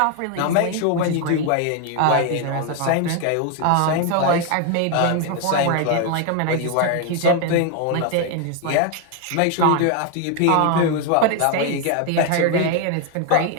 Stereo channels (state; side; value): different; both; correlation 0.01